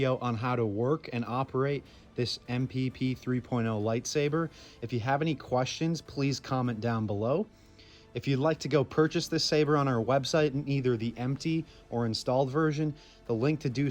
on how to work and operate this MPP 3.0 lightsaber. If you have any questions, please comment down below. If you'd like to go purchase this saber on our website in either the empty or installed version, the link to do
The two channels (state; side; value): identical; both; correlation 1.00